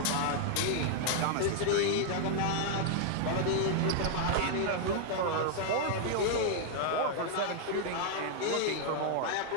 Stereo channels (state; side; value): different; both; correlation 0.00